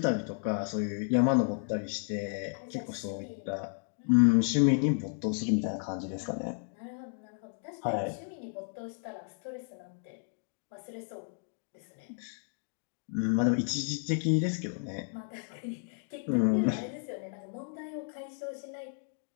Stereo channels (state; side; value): silent; right; 56 dB below the other